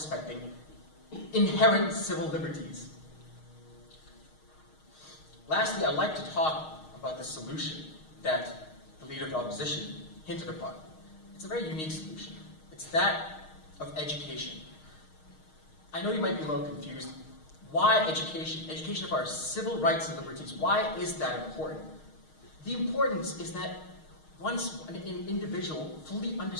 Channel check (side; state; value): right; late; 6.4 ms